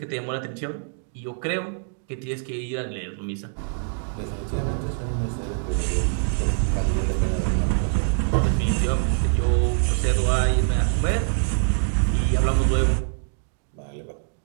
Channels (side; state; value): left; silent; digital silence